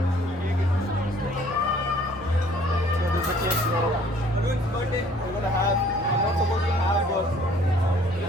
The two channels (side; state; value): both; normal; correlation 0.57